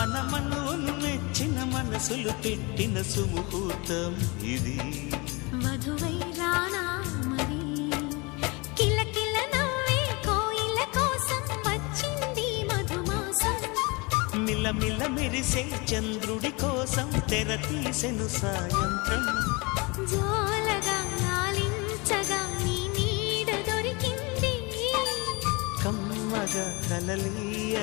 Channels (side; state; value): right; quieter; 27.1 dB